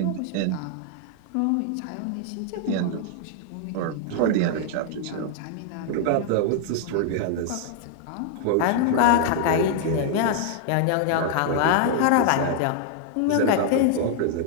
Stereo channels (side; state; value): both; different; correlation -0.01